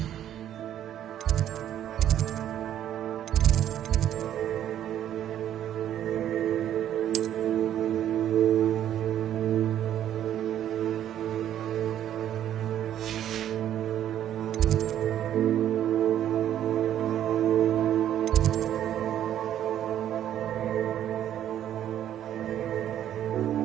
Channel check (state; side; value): quieter; left; 11.0 dB